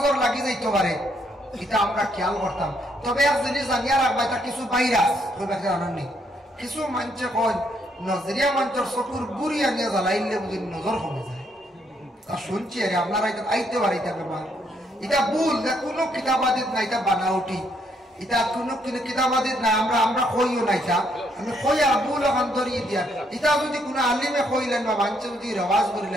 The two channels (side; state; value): both; normal; correlation 0.72